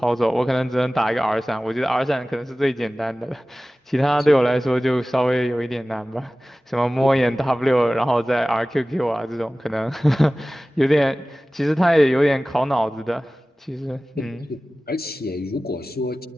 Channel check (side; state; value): both; normal; correlation 0.97